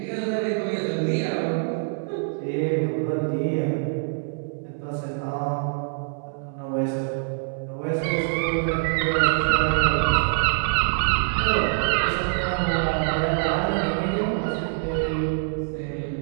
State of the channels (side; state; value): left; silent; 62 dB below the other